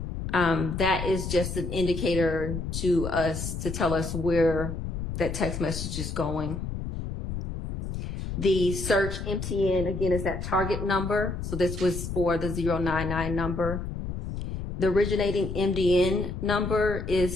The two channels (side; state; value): left; noise; rumble, 5 dB below the sound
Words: That is just an indicator to us to tell us where that text message is going. The search MTN, again, is that target number. So this was for the 099 number. The originating MDN number is